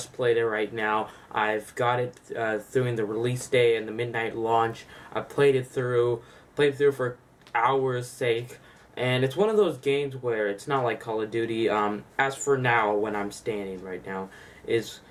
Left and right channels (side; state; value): both; identical; correlation 1.00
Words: played it right now. I've got it through the release day and the midnight launch. I played it through for hours' sake. And it's one of those games where it's not like Call of Duty. As for now, when I'm standing right now, is